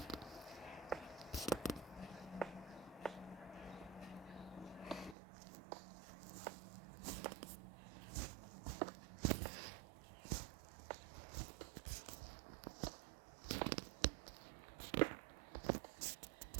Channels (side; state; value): left; drops out; at 5.2 s